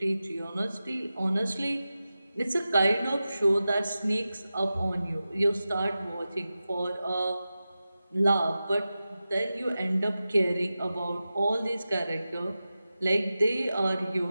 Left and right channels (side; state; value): both; inverted; correlation -0.94